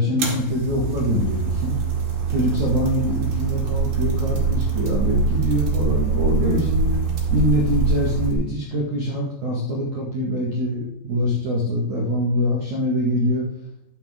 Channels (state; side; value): late; left; 3.8 ms